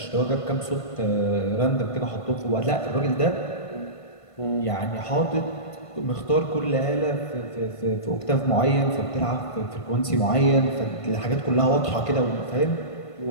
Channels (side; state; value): right; late; 1.5 ms